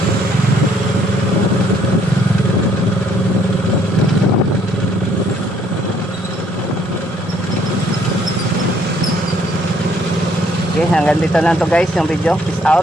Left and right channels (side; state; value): both; normal; correlation 0.65